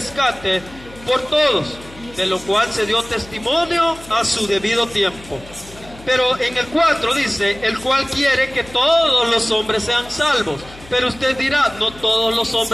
por todos, de lo cual se dio testimonio a su debido tiempo. Pero en el 4 dice: el cual quiere que todos los hombres sean salvos. Pero usted dirá: no todos los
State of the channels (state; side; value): noise; left; hum, 20 dB below the sound